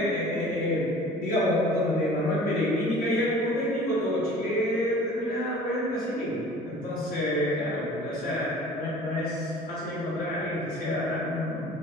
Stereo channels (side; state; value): both; normal; correlation 0.46